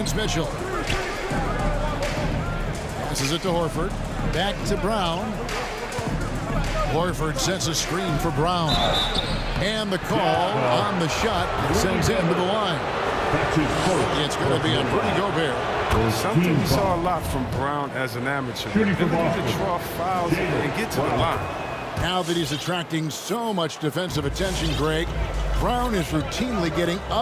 Mitchell. Passes it to Horford. Back to Brown. Horford sets a screen for Brown. And the call on the shot sends him to the line. It's going to be on Rudy Gobert. Something we saw a lot from Brown as an amateur. The ability to draw fouls and get to the line. Now that he's attracting so much defensive attention, Greg, Brown is routinely getting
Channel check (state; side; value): identical; both; correlation 1.00